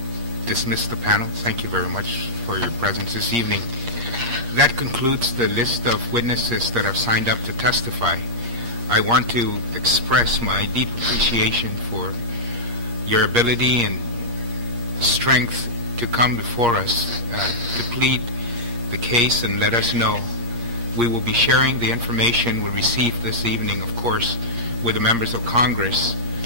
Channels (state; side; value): late; left; 8.5 ms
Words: dismiss the panel. Thank you very much for your presence this evening. That concludes the list of witnesses that have signed up to testify. I want to express my deep appreciation for your ability and strength to come before us to plead the case and let us know We will be sharing the information we received this evening, of course, with the members of Congress